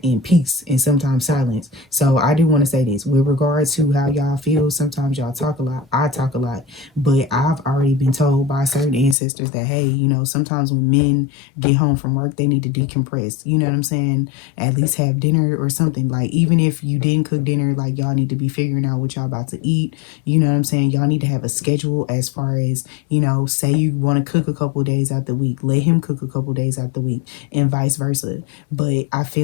in peace and sometimes silence. So I do want to say this with regards to how y'all feel. Sometimes y'all talk a lot. I talk a lot. But I've already been told by certain ancestors that, hey, you know, sometimes when men get home from work, they need to decompress. You know what I'm saying? At least have dinner or something. Like, even if you didn't cook dinner, like, y'all need to be figuring out what y'all about to eat. You know what I'm saying? Y'all need to have a schedule as far as, you know, say you want to cook a couple of days out the week. Let him cook a couple of days out the week and vice versa. But I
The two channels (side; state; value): right; drops out; at 9.2 s